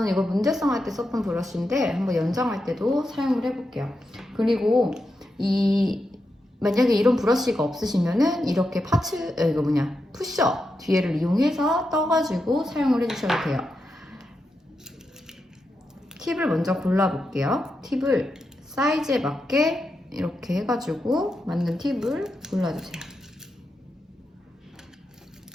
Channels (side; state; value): both; normal; correlation 0.87